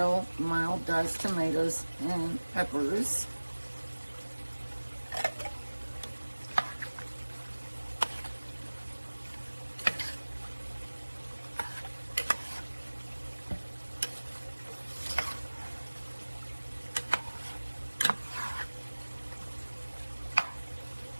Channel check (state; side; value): inverted; both; correlation -1.00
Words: mild diced tomatoes and peppers.